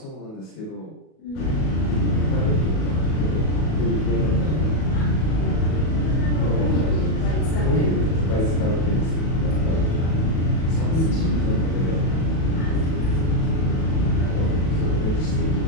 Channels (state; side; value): late; right; 37 ms